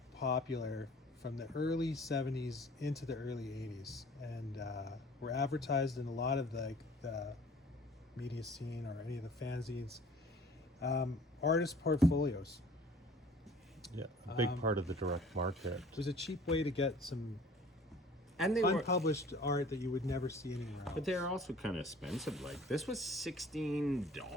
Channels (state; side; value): normal; both; correlation 0.50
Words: popular from the early 70s into the early 80s, and were advertised in a lot of the media scene or any of the fanzines. Artist portfolios. Yeah, a big part of the direct market. It was a cheap way to get some And they were, unpublished art that you would never see anywhere else. but they're also kind of expensive. Like this was